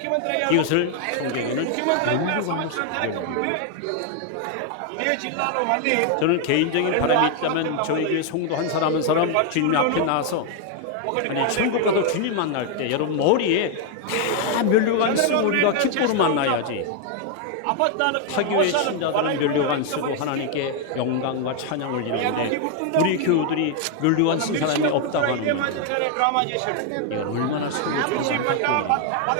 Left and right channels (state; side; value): different; both; correlation 0.00